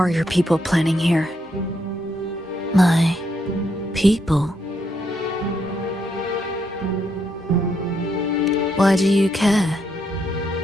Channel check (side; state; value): both; normal; correlation 0.77